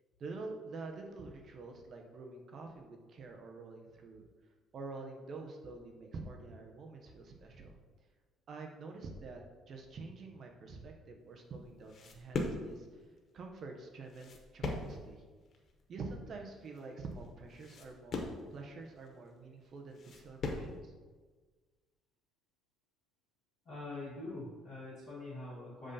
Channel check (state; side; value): normal; both; correlation 0.66